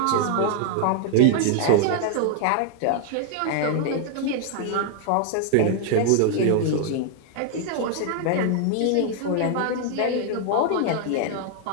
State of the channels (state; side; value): different; both; correlation 0.00